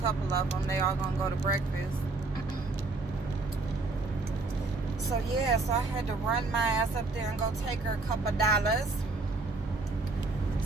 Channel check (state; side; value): quieter; left; 3.5 dB